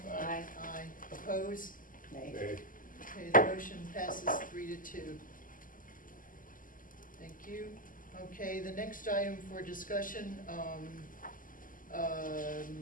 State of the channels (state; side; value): late; right; 0.39 ms